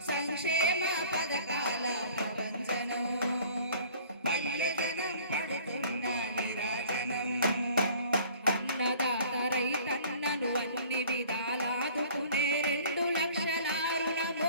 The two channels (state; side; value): inverted; both; correlation -0.50